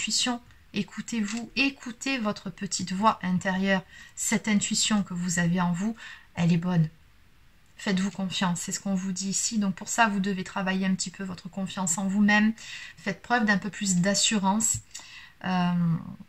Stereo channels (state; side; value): identical; both; correlation 1.00